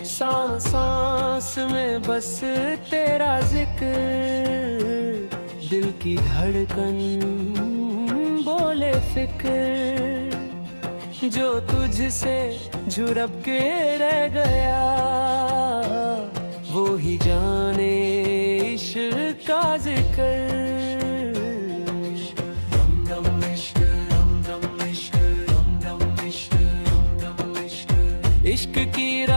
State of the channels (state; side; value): inverted; both; correlation -1.00